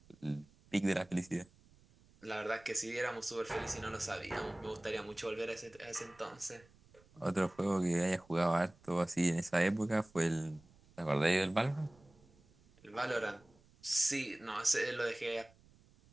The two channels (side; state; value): right; noise; rumble, 28 dB below the sound